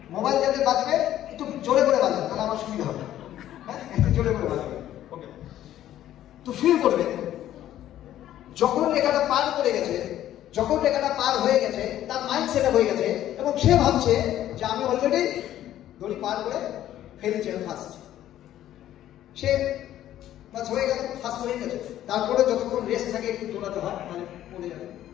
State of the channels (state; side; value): quieter; right; 12.4 dB